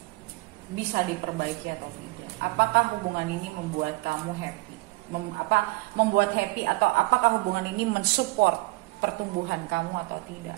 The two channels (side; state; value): left; quieter; 22.7 dB